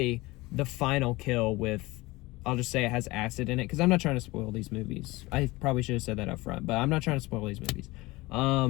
the final kill with, I'll just say it has acid in it, because I'm not trying to spoil these movies. I probably should have said that up front, but I'm not trying to spoil these movies.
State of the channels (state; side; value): quieter; right; 21.2 dB